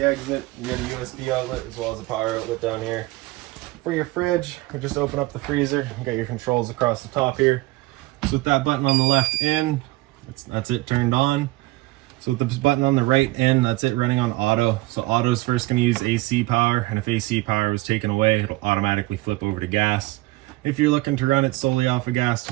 exit. You got a USB outlet as well as a power outlet down here. For your fridge, we just open up the freezer. You got your controls across the top here. So with that button on the left in, that's it turned on. So with this button on the right in, that's it running on auto. So auto is first going to use AC power, and if AC power was taken away, it'll automatically flip over to gas. If you're looking to run it solely off of gas,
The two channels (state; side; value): quieter; left; 20.1 dB